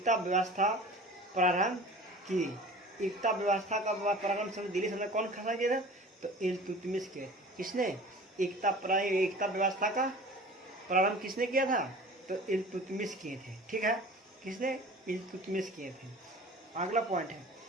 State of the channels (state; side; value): normal; both; correlation 0.41